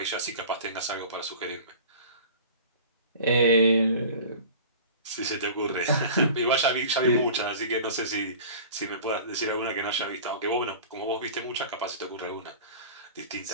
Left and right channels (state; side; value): inverted; both; correlation -0.40